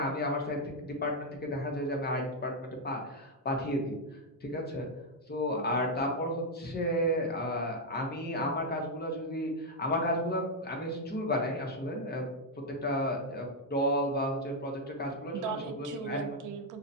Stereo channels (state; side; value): normal; both; correlation 0.00